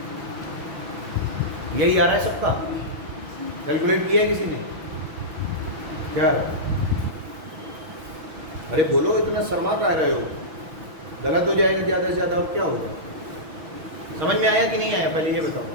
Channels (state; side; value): late; left; 6.1 ms